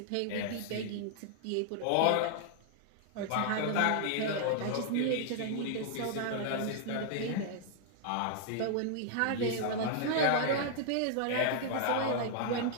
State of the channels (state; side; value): different; both; correlation -0.01